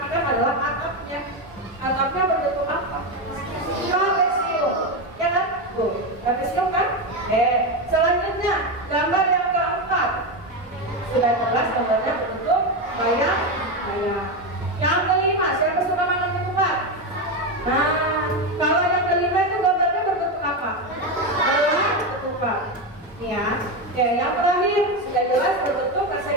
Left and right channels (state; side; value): normal; both; correlation 0.13